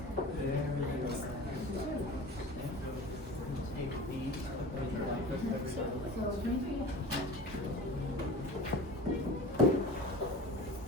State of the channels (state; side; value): normal; both; correlation 0.37